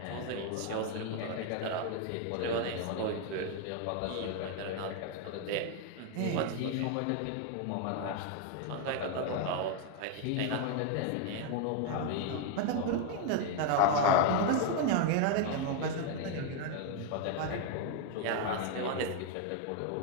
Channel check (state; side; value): different; both; correlation 0.01